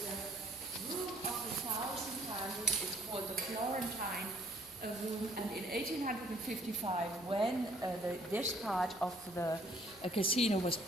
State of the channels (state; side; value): normal; both; correlation 0.61